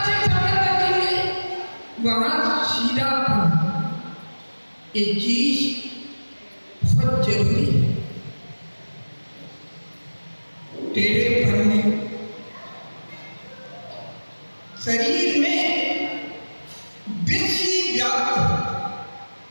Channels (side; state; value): both; inverted; correlation -1.00